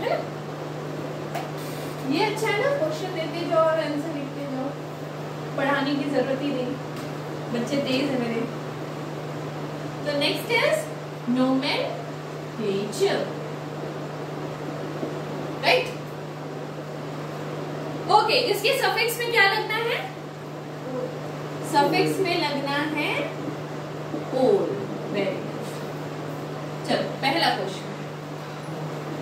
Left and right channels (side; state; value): both; identical; correlation 1.00